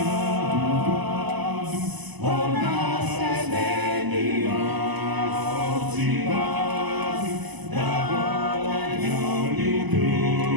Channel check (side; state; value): left; late; 1.0 ms